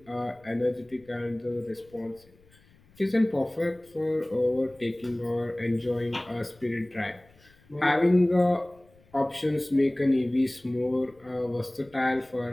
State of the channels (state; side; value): noise; left; rumble, 29 dB below the sound